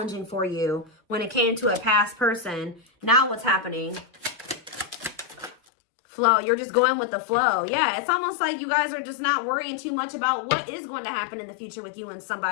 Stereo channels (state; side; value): drops out; right; at 5.6 s